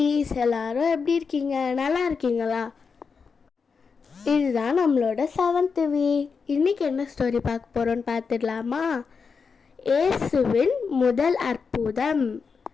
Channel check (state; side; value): quieter; right; 5.4 dB